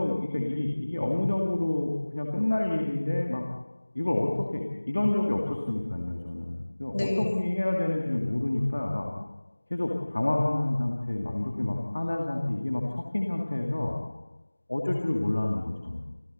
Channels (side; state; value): both; inverted; correlation -1.00